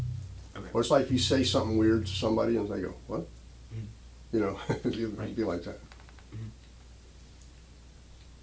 Okay. Or it's like if you say something weird to somebody and they go, "What?" Mm-hmm. It'd Right. be like that. Mm-hmm.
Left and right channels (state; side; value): identical; both; correlation 1.00